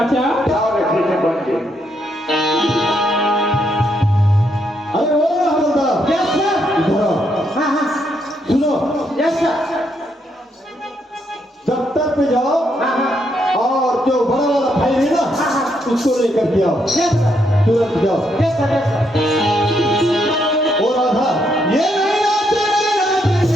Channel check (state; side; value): normal; both; correlation 0.76